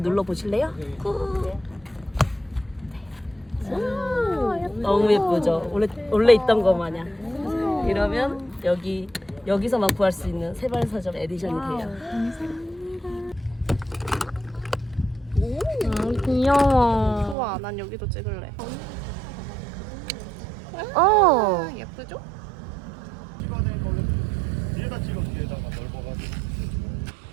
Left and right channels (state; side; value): drops out; left; at 17.4 s